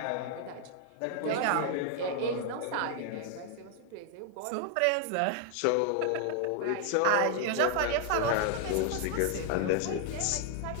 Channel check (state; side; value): different; both; correlation 0.00